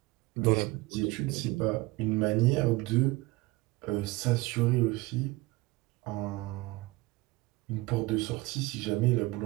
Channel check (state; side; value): quieter; left; 21.4 dB